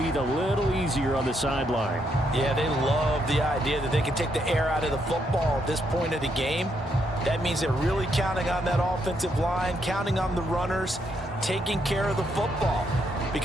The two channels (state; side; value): normal; both; correlation 0.76